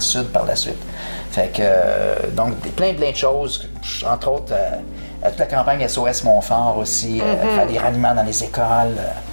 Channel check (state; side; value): inverted; both; correlation -1.00